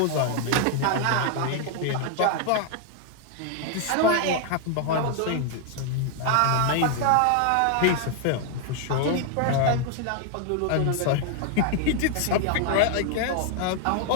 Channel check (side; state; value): both; different; correlation 0.00